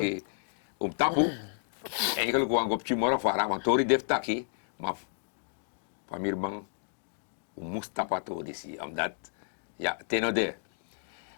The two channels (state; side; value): silent; right; digital silence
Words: om tapu. Eigenlijk wang op morgen voor want tori def taki, maar van mir bang moest tapato disi, omdat ja, tenode.